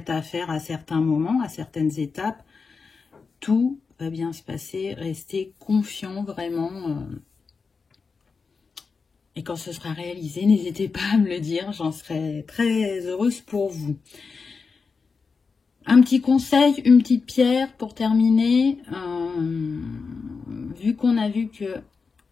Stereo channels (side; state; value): right; quieter; 4.9 dB